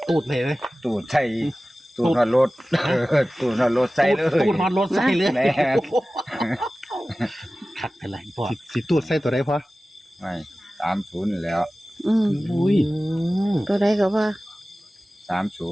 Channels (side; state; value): both; normal; correlation 0.96